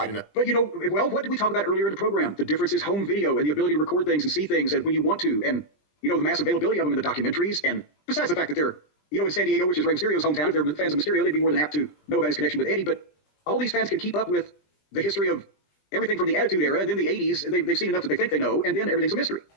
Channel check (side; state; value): right; late; 20 ms